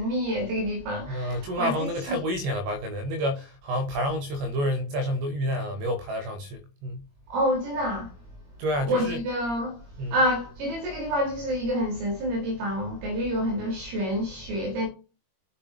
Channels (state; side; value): late; left; 21 ms